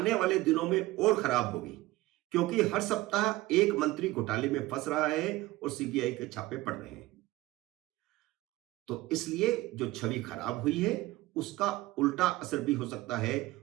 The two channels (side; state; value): left; quieter; 18.4 dB